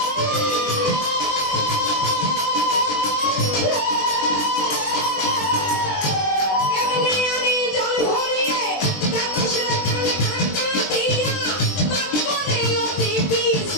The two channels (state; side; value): late; right; 20 ms